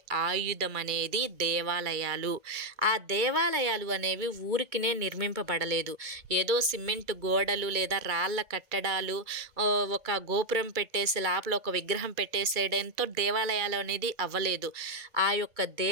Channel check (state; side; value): late; left; 2.3 ms